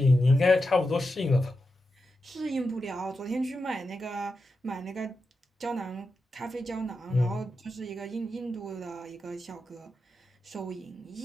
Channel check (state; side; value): normal; both; correlation 0.89